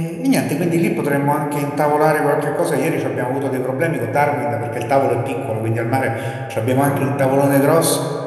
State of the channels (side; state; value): both; identical; correlation 1.00